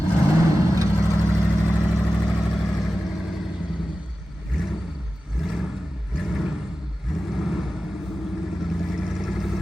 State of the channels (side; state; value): both; normal; correlation 0.94